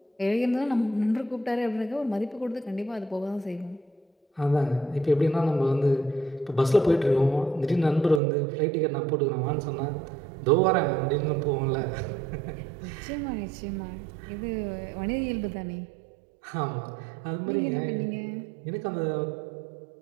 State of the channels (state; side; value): drops out; left; at 8.2 s